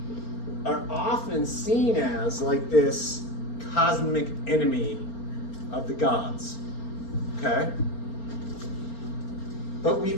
are often seen as like this cosmic enemy of the gods. Okay? But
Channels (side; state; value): right; late; 4.4 ms